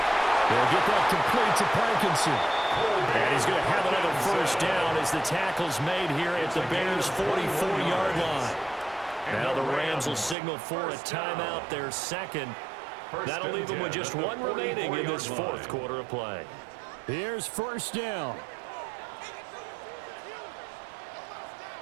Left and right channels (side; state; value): left; drops out; at 10.4 s